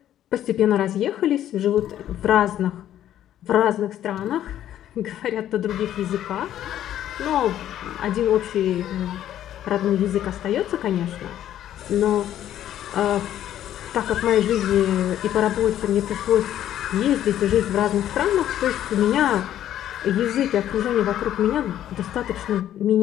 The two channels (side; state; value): right; quieter; 11.6 dB